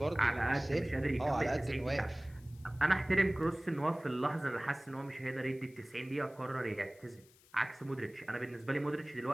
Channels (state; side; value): noise; left; hiss, 27 dB below the sound